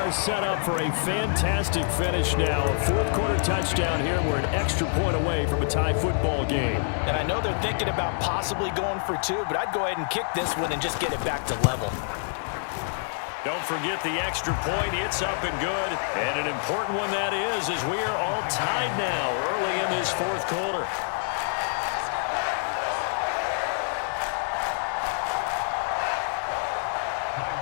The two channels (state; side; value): silent; right; digital silence